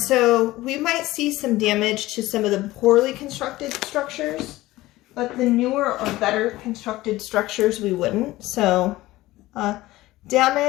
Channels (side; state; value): right; quieter; 17.7 dB